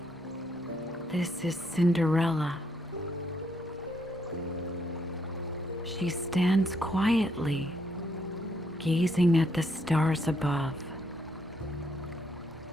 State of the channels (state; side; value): normal; both; correlation 0.74